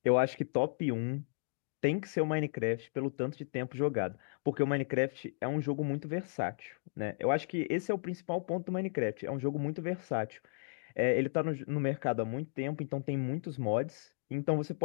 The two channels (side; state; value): right; silent; digital silence